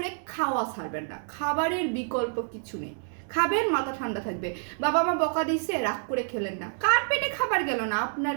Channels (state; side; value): silent; left; 59 dB below the other